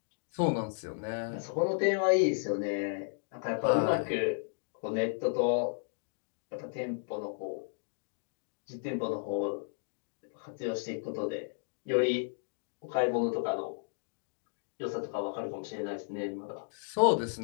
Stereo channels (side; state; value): right; silent; digital silence